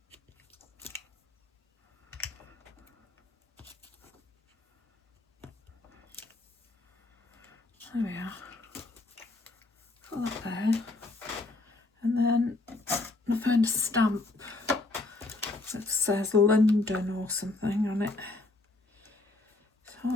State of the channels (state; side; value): quieter; right; 3.1 dB